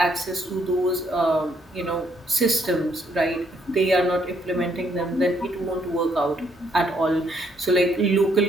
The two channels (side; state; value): both; normal; correlation 0.71